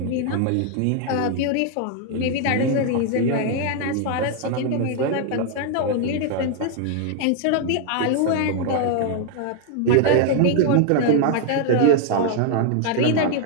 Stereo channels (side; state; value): both; different; correlation 0.00